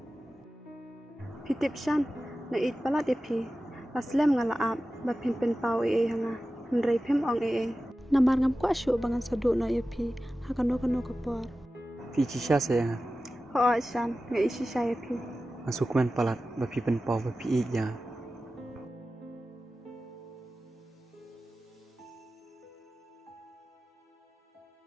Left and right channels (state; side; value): normal; both; correlation 0.94